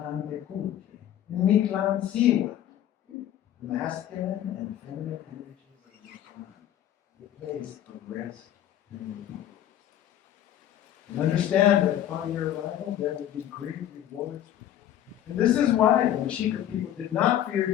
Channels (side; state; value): right; quieter; 11.4 dB